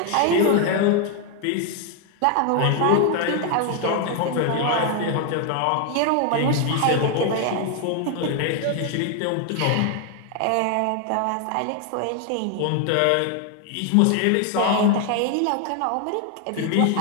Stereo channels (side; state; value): both; different; correlation 0.01